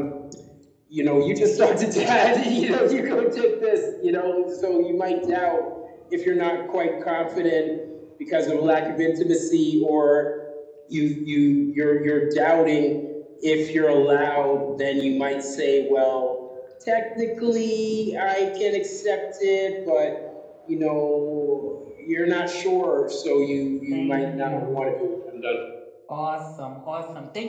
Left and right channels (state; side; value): identical; both; correlation 1.00